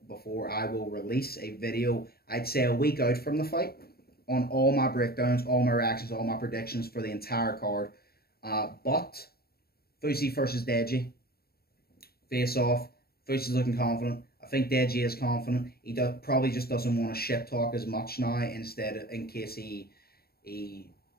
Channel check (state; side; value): late; right; 0.45 ms